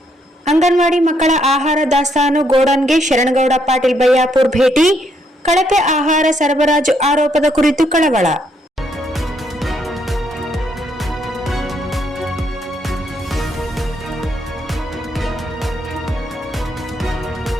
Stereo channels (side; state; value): both; normal; correlation 0.73